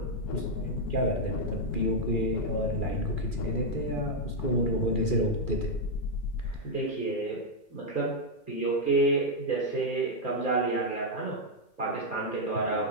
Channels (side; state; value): right; late; 2.4 ms